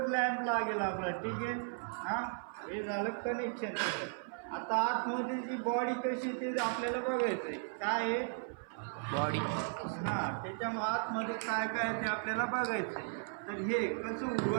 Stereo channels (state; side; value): silent; left; 54 dB below the other